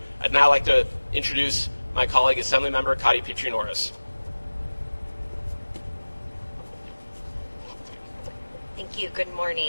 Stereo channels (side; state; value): both; inverted; correlation -1.00